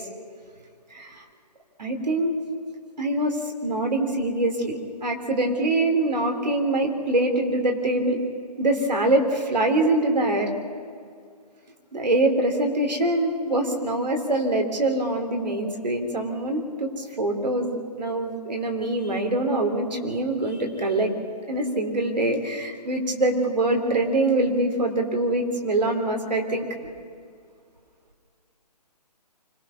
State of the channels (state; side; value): normal; both; correlation -0.03